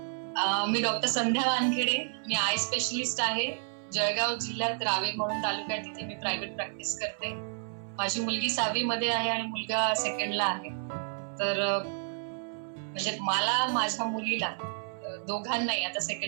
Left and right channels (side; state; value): left; silent; 57 dB below the other